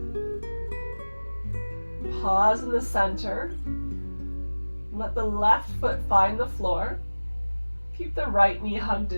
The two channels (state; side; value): inverted; both; correlation -1.00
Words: Pause in the center. Let the left foot find the floor. Keep the right knee hugged